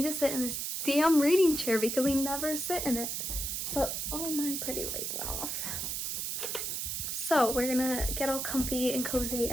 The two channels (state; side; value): noise; right; hiss, 2 dB below the sound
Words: to sit in this damn reading chair because I never sit in it. So, oh, my pretty light went off. So we're gonna get all comfy and cozy